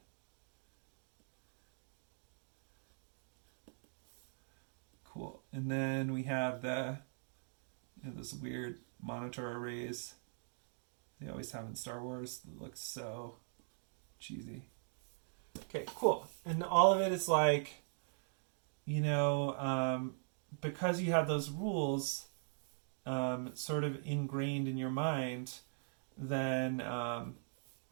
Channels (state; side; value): silent; left; digital silence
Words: Cool. And then we have those weird monitor arrays they always have in Star Wars. It looks so cheesy. Okay, cool. And all of it is like, you know, because you have those rules sort of ingrained in your mind, then